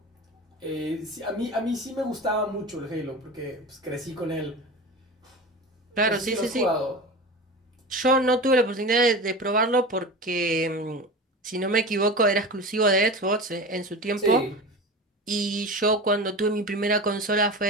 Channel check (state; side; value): normal; both; correlation 0.30